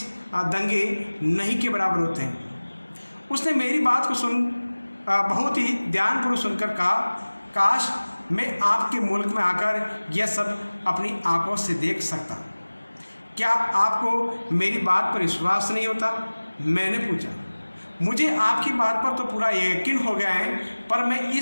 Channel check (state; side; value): inverted; both; correlation -1.00